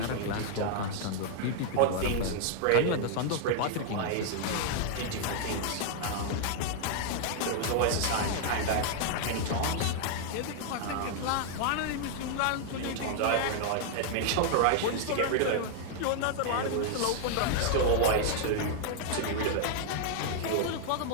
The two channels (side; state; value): both; different; correlation 0.00